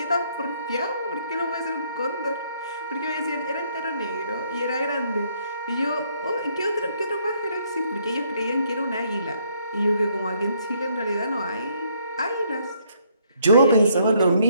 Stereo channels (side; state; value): both; inverted; correlation -0.69